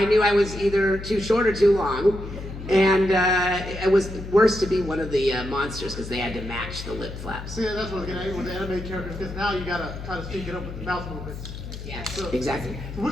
knew I was either too short or too long. And it was worse to be one of the monsters because they had to match the lip flaps. See, that's what I was getting at with the anime characters, because now you gotta try to sync it up with the mouth movements. Yes, So, exactly.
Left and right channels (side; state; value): left; noise; hum, 10 dB below the sound